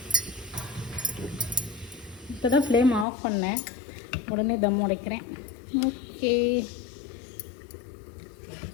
இப்போ தான் ஃப்ளேம் ஆஃப் பண்ணேன், உடனே தம் உடைக்கிறேன். ஓகே,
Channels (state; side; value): drops out; right; at 3.1 s